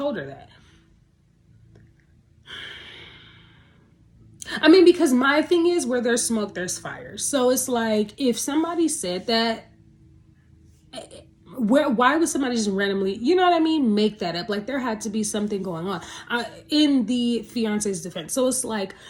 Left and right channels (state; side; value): identical; both; correlation 1.00